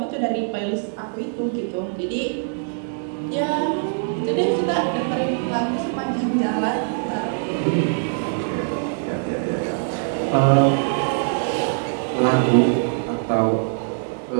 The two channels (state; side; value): silent; left; digital silence